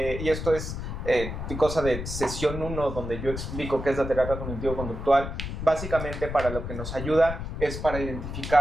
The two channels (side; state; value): left; noise; rumble, 6 dB below the sound